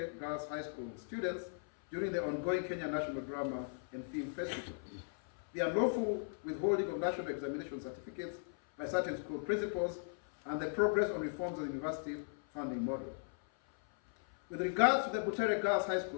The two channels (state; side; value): silent; right; 53 dB below the other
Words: Girls High School students during the ongoing Kenya National Drama and Film Festival, the unlawful withholding of national examination certificates by certain school principals, and the progress on reforms of the university funding model. With regards to the Butere Girls High